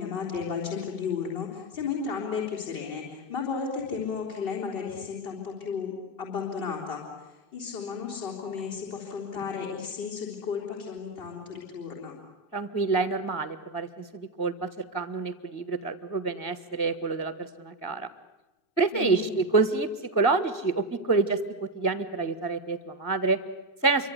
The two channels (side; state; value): right; late; 1.9 ms